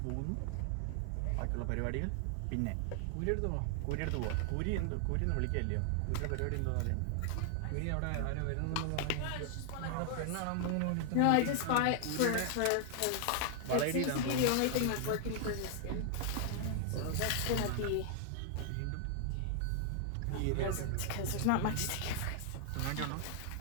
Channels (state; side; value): different; both; correlation 0.00